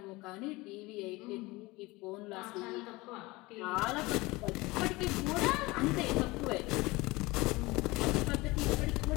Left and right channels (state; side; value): quieter; right; 22.0 dB